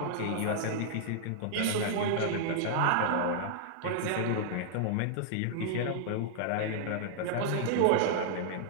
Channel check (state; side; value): different; both; correlation -0.01